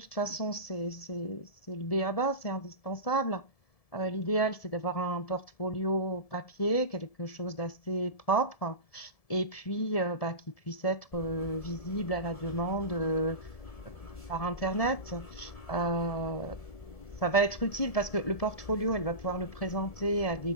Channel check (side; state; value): right; late; 1.7 ms